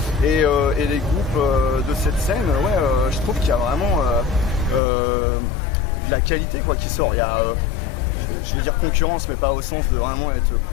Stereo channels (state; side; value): drops out; right; at 4.8 s